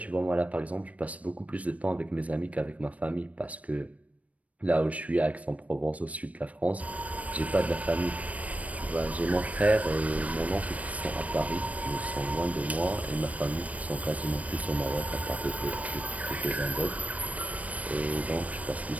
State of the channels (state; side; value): late; left; 0.067 ms